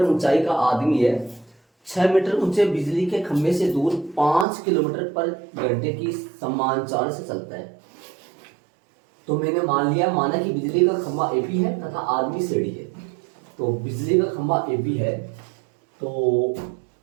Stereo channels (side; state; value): left; drops out; at 4.5 s